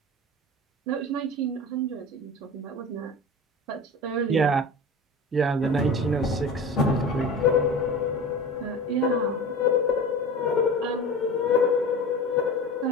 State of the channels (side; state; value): both; normal; correlation 0.33